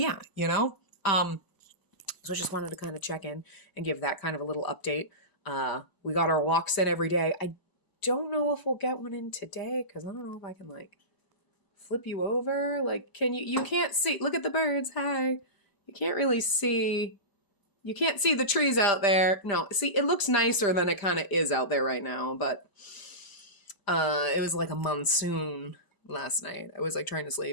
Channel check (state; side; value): late; right; 1.0 ms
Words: so I just wanted to kind of check in and give that kind of a little update. We got our walks in every day. I don't know if we'll get one in today because I don't know if I can flip you over. Can you can't see, look at the birds. Hi. You can't really see, you can't see the trees out there. No, see, it looks nicer than it kind of is out there right now, but it was like a monsoon last night. I was trying to